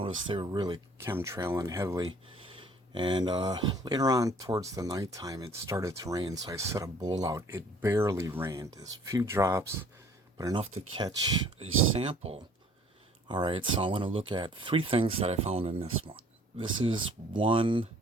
they were really chemtrailing heavily. And later on, towards the nighttime, it started to rain, so I set a bowl out. It barely rained. There's a few drops, but enough to catch a sample. All right, so I want to look at three things that I found in this one. This is one.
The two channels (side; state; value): both; normal; correlation 0.55